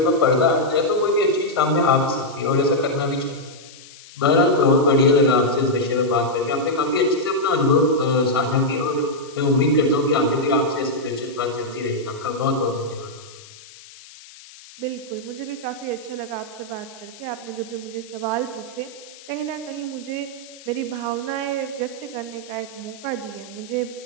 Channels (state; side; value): noise; left; hiss, 20 dB below the sound